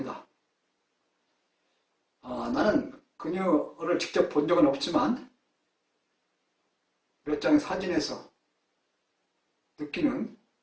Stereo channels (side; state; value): both; identical; correlation 1.00